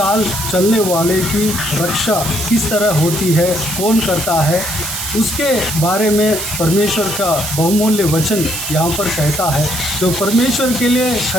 चलने वाले की रक्षा किस तरह होती है, कौन करता है, उसके बारे में परमेश्वर का बहुमूल्य वचन यहाँ पर कहता है। जो परमेश्वर के लिए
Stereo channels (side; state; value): right; noise; hiss, 5 dB below the sound